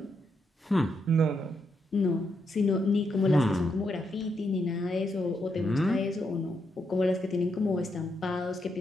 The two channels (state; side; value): normal; both; correlation 0.80